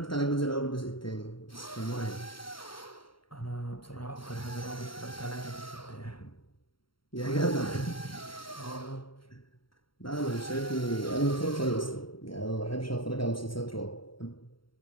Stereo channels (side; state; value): right; late; 0.73 ms